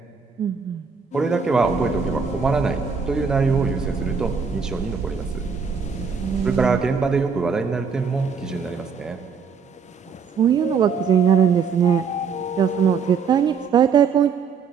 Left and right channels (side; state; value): left; quieter; 5.9 dB